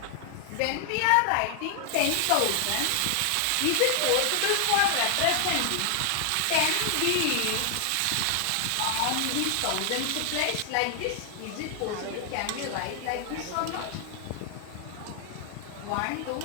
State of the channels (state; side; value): different; both; correlation 0.00